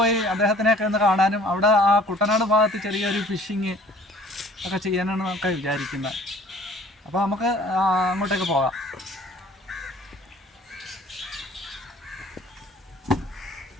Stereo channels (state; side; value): normal; both; correlation 0.52